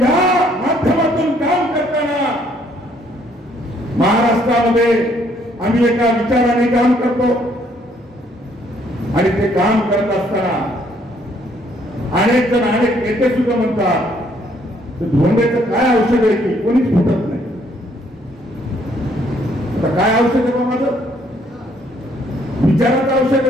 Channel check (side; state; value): both; normal; correlation 0.66